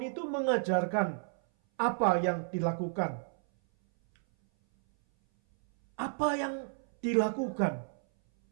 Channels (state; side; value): silent; left; 57 dB below the other